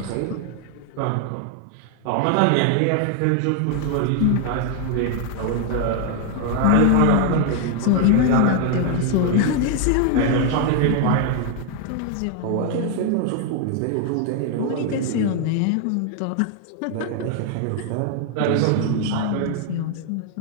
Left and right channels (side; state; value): both; different; correlation 0.00